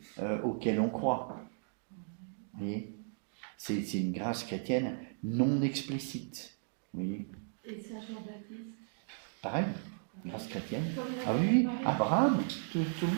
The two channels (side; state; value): left; silent; digital silence